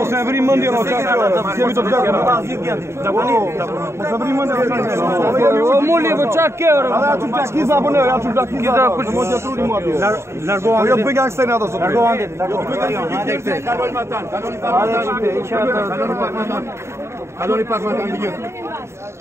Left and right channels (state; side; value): late; left; 0.13 ms